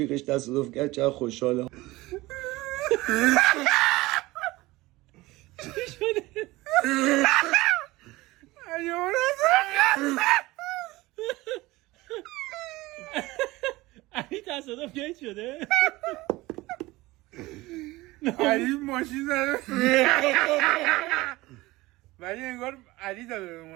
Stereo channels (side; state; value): left; quieter; 19.8 dB